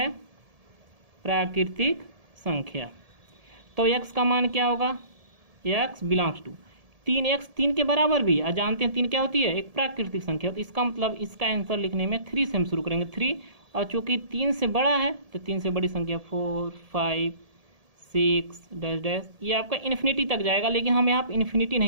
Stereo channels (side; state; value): left; late; 1.7 ms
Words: प्राकृतिक संख्या। तो x का मान क्या होगा, x बिलोंग्स टू 3x 3 के बराबर भी, और जानते हैं 3 क्या होती है, एक प्राकृतिक संख्या। तो इसका मतलब इसका आंसर लिखने में 3 से हम शुरू करेंगे, 3, और चूंकि 3 से बड़ा है तो 3 से बड़ी संख्या 4 5 6 डैश डैश, ये आपका इन्फिनिटी तक जाएगा, लेकिन हम यहाँ पर इन्फिनिटी